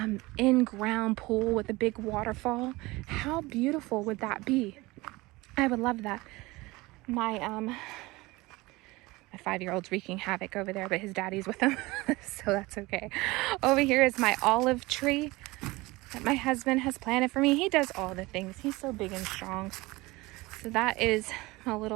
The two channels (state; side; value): quieter; left; 21.6 dB